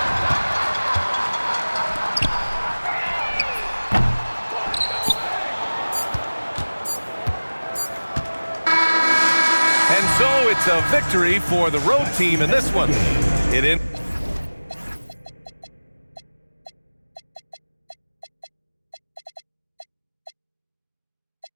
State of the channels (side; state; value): both; inverted; correlation -1.00